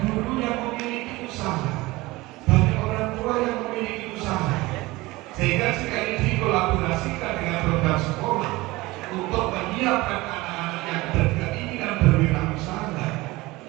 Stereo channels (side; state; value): left; quieter; 20.7 dB